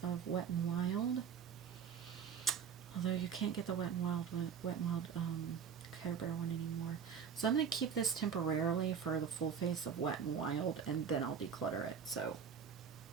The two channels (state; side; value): quieter; left; 7.1 dB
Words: of Wet n Wild. Although you can't get the Wet n Wild Care Bear one anymore. So I'm going to keep this temporarily for the full face of Wet n Wild, and then I'll declutter it. So